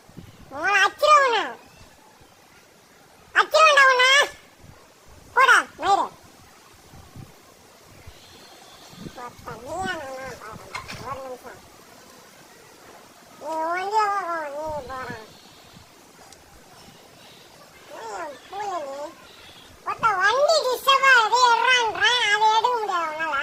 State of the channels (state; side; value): identical; both; correlation 1.00